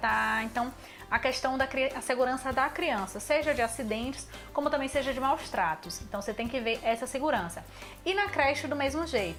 Então a questão da segurança da criança, seja de acidentes, como também seja de maus tratos. Então você tem que ver essa segurança. E na creche do mesmo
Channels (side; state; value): both; identical; correlation 1.00